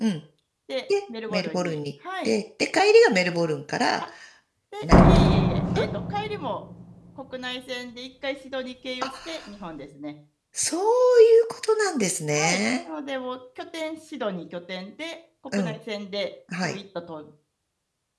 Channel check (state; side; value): identical; both; correlation 1.00